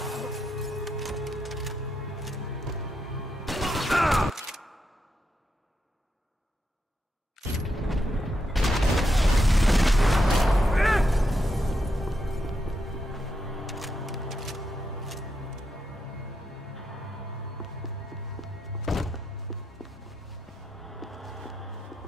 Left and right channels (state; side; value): normal; both; correlation 0.83